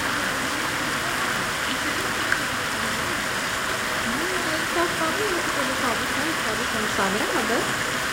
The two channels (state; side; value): identical; both; correlation 1.00